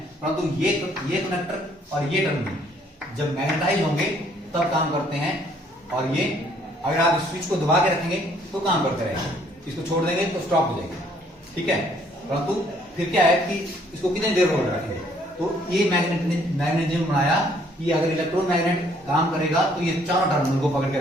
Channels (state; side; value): normal; both; correlation 0.64